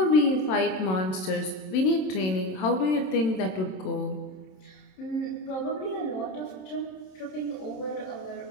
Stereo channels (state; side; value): late; right; 27 ms